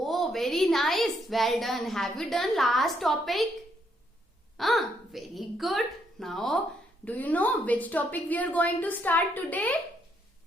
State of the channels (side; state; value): both; normal; correlation 0.73